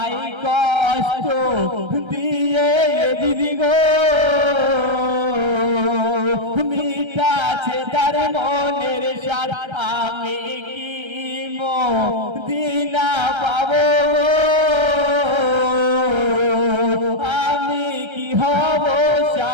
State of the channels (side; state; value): left; late; 1.3 ms